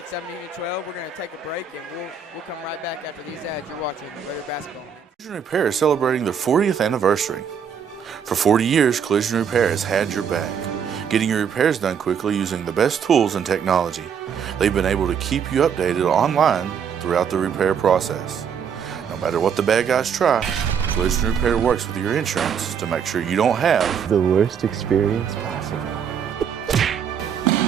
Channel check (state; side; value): quieter; left; 7.3 dB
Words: 17-12. We're going to take a break, and we'll come right back after these ads. You're watching Raider Basketball. Collision Repair is celebrating their 40th anniversary. For 40 years, Collision Repair has had your back, getting your repairs done quickly using the best tools and technology. They've been able to keep you updated online throughout the repair process. No matter what the bad guys try, Collision Repair works with your insurance to make sure you don't have the worst experience possible.